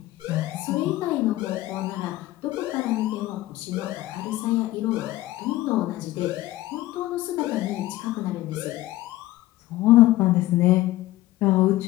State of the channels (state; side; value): quieter; right; 16.6 dB